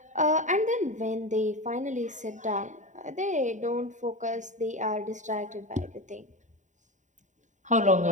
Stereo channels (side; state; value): left; late; 0.36 ms